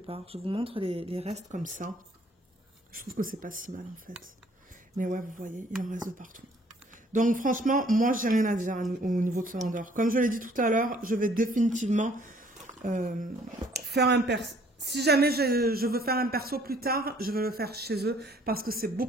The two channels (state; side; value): normal; both; correlation 0.60